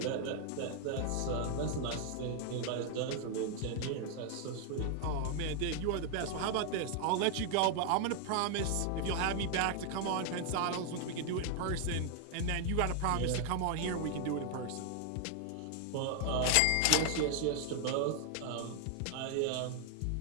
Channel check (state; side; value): different; both; correlation 0.00